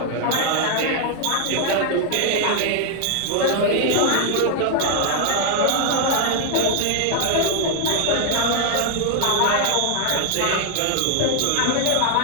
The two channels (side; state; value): both; different; correlation 0.00